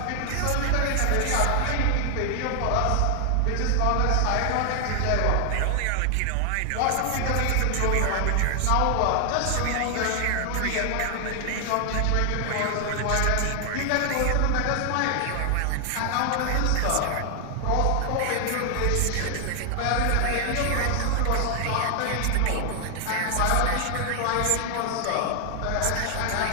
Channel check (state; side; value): different; both; correlation 0.00